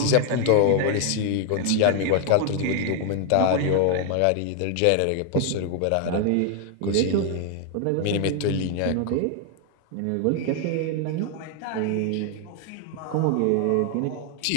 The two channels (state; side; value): different; both; correlation 0.00